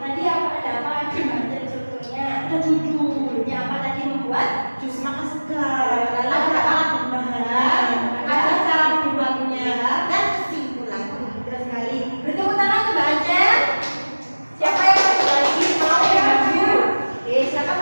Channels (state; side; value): inverted; both; correlation -1.00